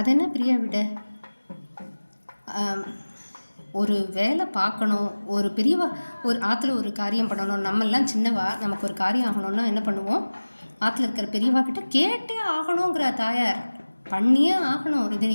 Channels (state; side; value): inverted; both; correlation -1.00